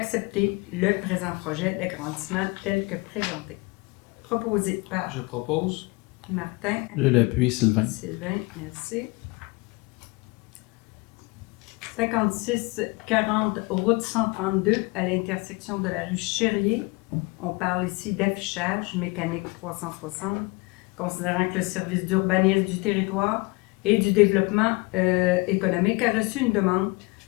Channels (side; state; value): right; quieter; 26.6 dB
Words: le présent projet d'agrandissement tel que présenté. proposé par Je propose. Martin. Je l'appuie, Sylvain. Sylvain, merci. 5640 route 132 à l'intersection de la rue Chérier. On parle ici d'affichage mécanique 360, considérant que le service d'urbanisme du territoire et du développement économique a reçu une demande